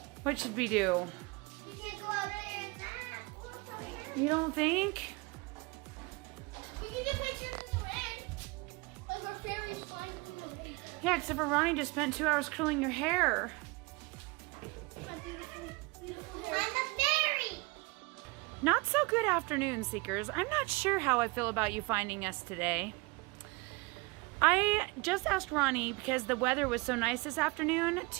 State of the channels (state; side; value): quieter; left; 26.1 dB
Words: What should we do? You can't go out there and that. You don't think? You can get pictures in the rain. Like our fairies flying in the rain. Yeah, except for Ronnie just spent 2 hours curling your hair. My beautiful, beautiful hair. I'm a fairy! Not so good afternoon, Seekers. I'm not sure how I feel about you finding us today. I just asked Ronnie, because the weather was so nice this afternoon,